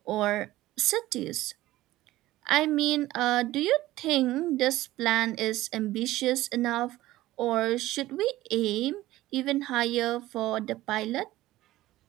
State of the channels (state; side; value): quieter; left; 16.4 dB